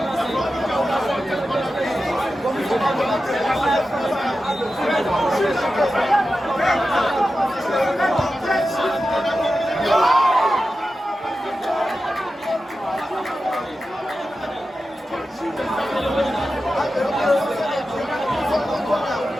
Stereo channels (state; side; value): normal; both; correlation 0.92